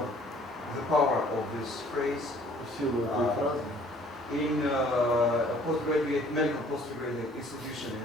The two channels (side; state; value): both; normal; correlation 0.56